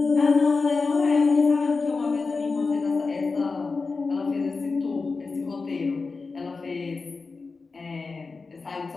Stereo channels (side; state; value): right; quieter; 4.2 dB